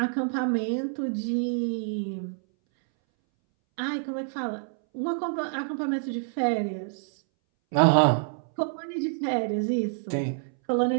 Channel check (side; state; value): left; silent; 60 dB below the other